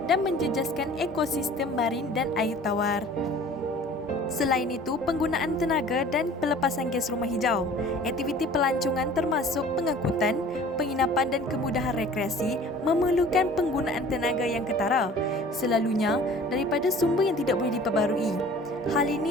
dan menjejaskan ekosistem marin dan air tawar. Selain itu, penggunaan tenaga dan pelepasan gas rumah hijau. Aktiviti pelancongan termasuk pengangkutan, penginapan dan kemudahan rekreasi memerlukan penggunaan tenaga yang ketara, selalunya daripada sumber yang tidak boleh diperbarui. Hal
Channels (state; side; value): normal; both; correlation 0.47